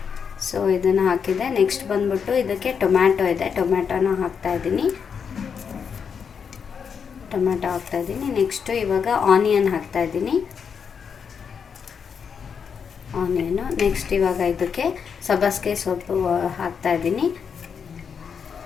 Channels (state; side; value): quieter; right; 6.6 dB